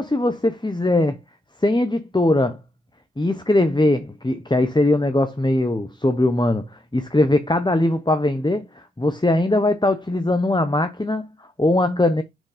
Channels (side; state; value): both; normal; correlation 0.81